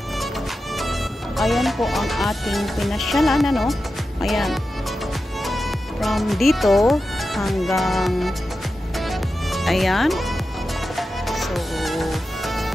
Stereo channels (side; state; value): both; normal; correlation 0.91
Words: ayan po ang ating pinasyalan Ayan. From dito hanggang ayan. So